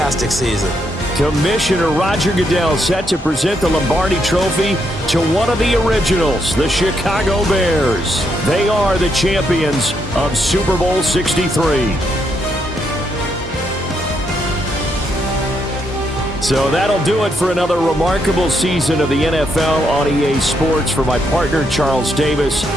season. Commissioner Roger Goodell set to present the Lombardi Trophy to one of the originals, the Chicago Bears. They are the champions of Super Bowl 63. So that'll do it for another remarkable season of the NFL on EA Sports. For my partner, Charles Davis,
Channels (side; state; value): both; normal; correlation 0.78